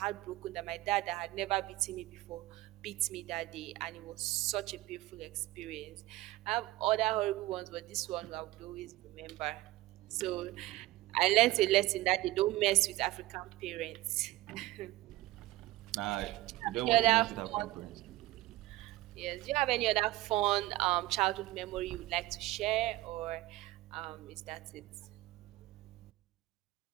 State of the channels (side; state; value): left; quieter; 17.8 dB